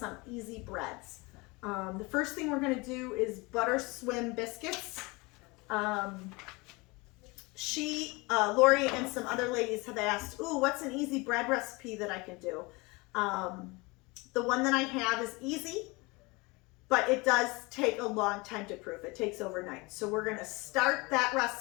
easy breads. The first thing we're going to do is butter swim biscuits. Lori and some other ladies have asked, ooh, what's an easy bread recipe that I can do? The one that I have is easy, but it does take a long time to proof. It takes overnight. So we're going to start that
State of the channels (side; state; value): right; quieter; 25.7 dB